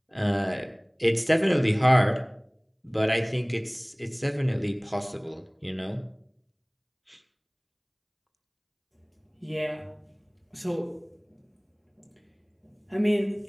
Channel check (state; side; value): identical; both; correlation 1.00